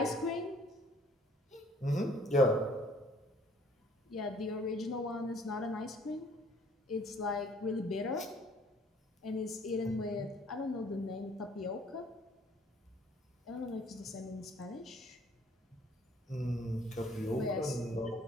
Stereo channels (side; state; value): both; normal; correlation 0.58